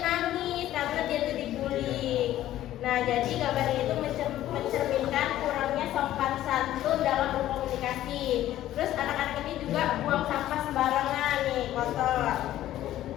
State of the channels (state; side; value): quieter; right; 13.4 dB